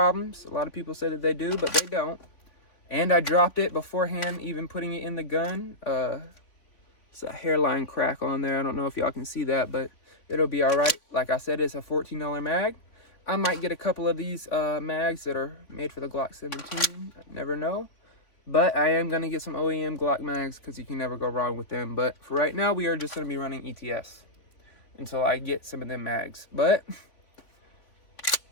A lot of people say that they do, but they don't. And I dropped it beforehand, even putting it in the gun. It's a hairline crack on there. I don't know if y'all can see that, but it'll be all right. Like I said, it's a $14 mag. I might get a couple of these mags that are made for the Glock 17. I never know. But I am going to get some OEM Glock mags because you can never go wrong with them. But for right now, we are just going to be running ETS until I get some of them mags. But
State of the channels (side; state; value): right; late; 3.5 ms